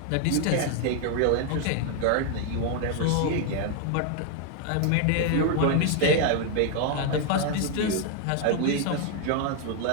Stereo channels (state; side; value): different; both; correlation 0.01